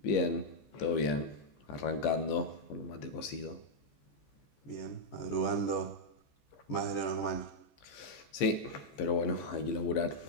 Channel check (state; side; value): late; right; 14 ms